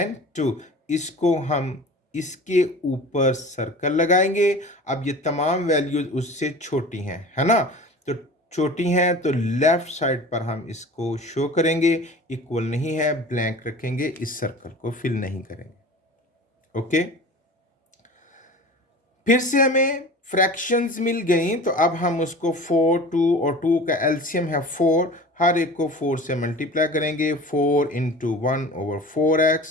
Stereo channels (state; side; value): normal; both; correlation 0.38